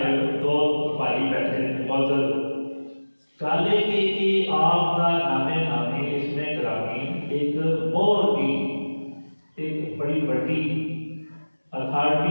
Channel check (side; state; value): both; inverted; correlation -1.00